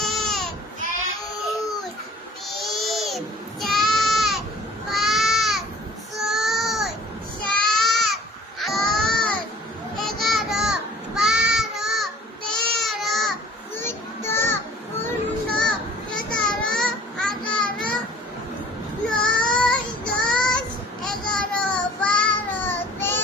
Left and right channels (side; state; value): both; normal; correlation 0.49